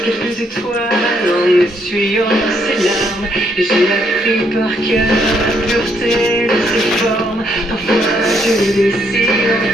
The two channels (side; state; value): both; normal; correlation 0.72